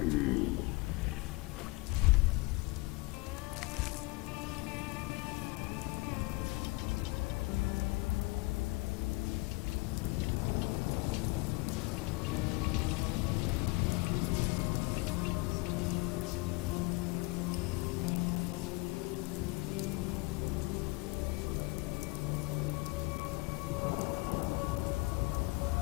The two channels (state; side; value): quieter; right; 25.0 dB